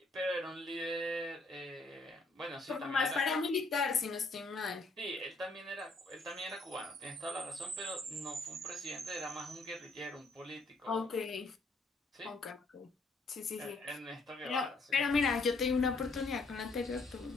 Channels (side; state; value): right; quieter; 3.2 dB